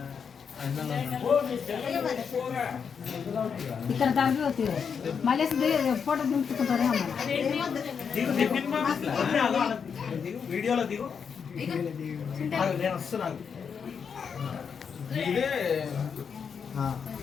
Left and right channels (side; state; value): right; quieter; 6.6 dB